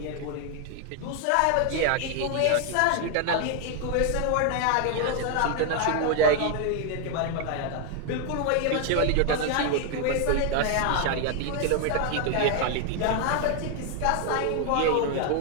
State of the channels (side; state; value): both; different; correlation 0.00